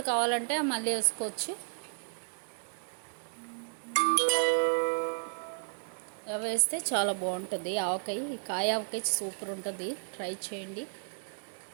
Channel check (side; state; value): left; silent; digital silence